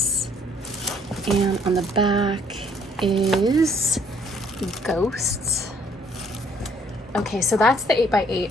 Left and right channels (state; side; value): normal; both; correlation 0.63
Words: and on the back is ghosts. Okay, so that's the 8x8.